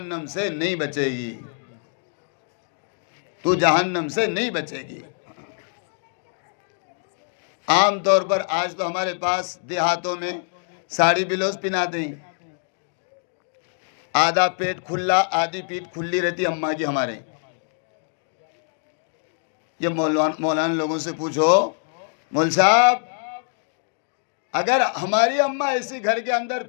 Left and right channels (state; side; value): silent; right; 62 dB below the other